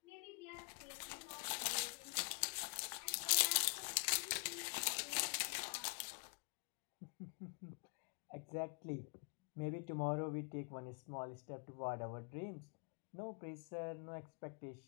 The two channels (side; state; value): right; quieter; 37.3 dB